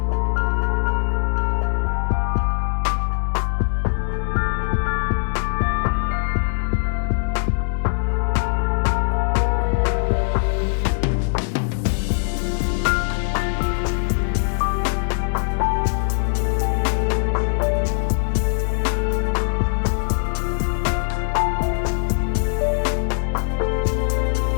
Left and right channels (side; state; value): right; silent; digital silence